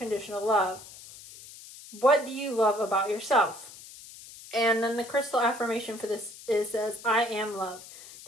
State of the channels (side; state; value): left; noise; hiss, 17 dB below the sound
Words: love? What do you love about yourself? And then the crystal affirmation for this says, I am love.